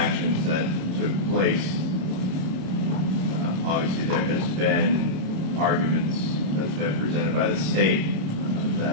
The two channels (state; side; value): late; left; 27 ms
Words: that took place. Obviously, there has been arguments that's been presented by the state